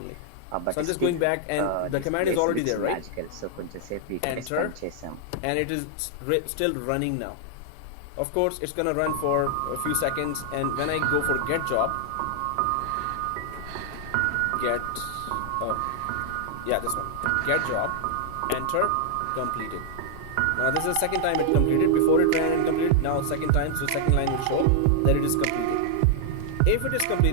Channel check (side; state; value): both; different; correlation 0.00